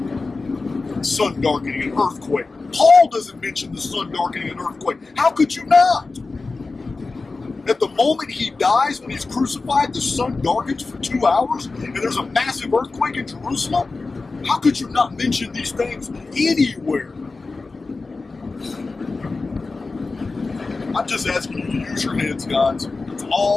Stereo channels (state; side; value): quieter; right; 3.8 dB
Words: Sun darkening and earthquake. Paul doesn't mention the sun darkening and earthquake. How could you not? At the moment he dies, when he's crucified, the sun darkens for 2 hours and there's a massive earthquake in Jerusalem? How could you not mention these things anywhere? I'm just asking you to use your heads, guys. That's